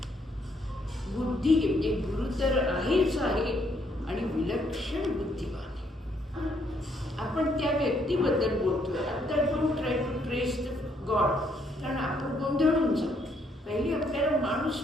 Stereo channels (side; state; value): both; normal; correlation 0.71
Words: बुद्धी म्हणजे गुरु तर आहेच आहे आणि विलक्षण बुद्धिवान आहे. आपण त्या व्यक्तीबद्दल बोलतोय. आता don't try to trace the god, कारण आपण गोंधळून जाऊ. पहिली आपल्याला माणूस